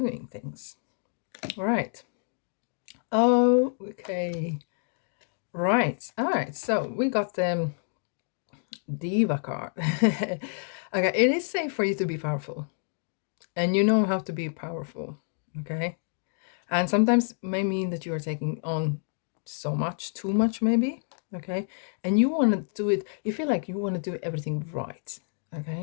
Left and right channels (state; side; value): silent; right; digital silence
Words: things. All right. Oh, okay. Right. All right. So we got the Diva card. Okay. It is safe for you to be powerful, and you know how to be powerful. Okay. And sometimes may mean that you are taking on so much, too much, maybe. Okay. And you want to do it, you feel like you want to do everything right.